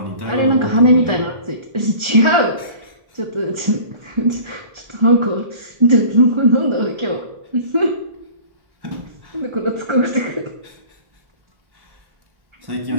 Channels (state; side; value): late; left; 1.4 ms